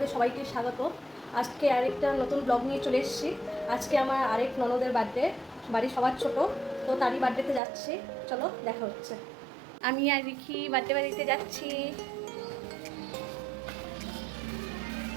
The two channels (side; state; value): left; drops out; at 7.6 s